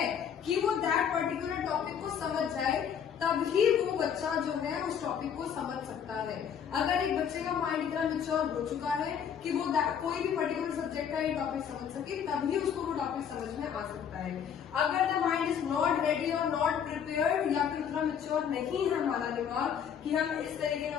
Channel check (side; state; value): right; quieter; 8.1 dB